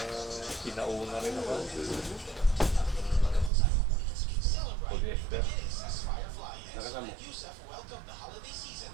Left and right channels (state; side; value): drops out; left; at 3.5 s